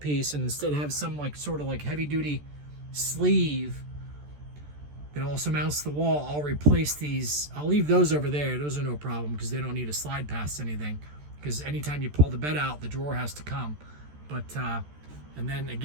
and instead have some like sort of like heavy duty sleeve that also mounts the wall, I'll replace these. I'll leave those over there. Those are no problem because they don't need to slide past anything, because anytime you pull the bed out, the drawer has to come. But and then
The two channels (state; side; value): late; left; 14 ms